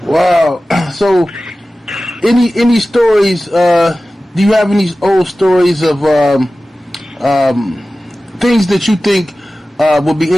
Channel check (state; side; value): normal; both; correlation 0.96